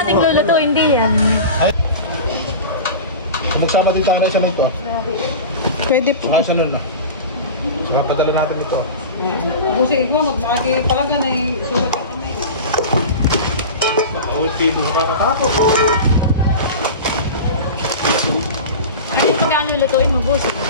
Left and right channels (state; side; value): inverted; both; correlation -0.30